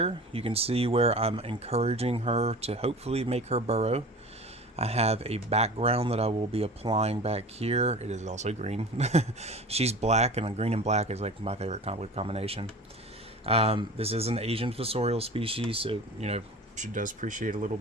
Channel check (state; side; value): normal; both; correlation 0.37